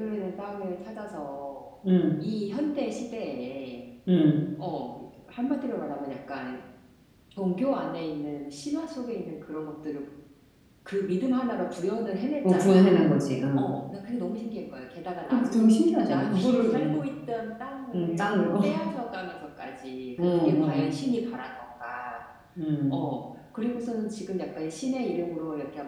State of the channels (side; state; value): both; identical; correlation 1.00